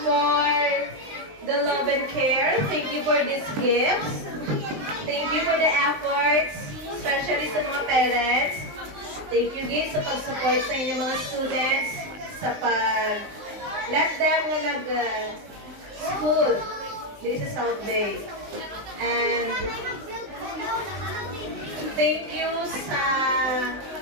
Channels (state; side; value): late; left; 19 ms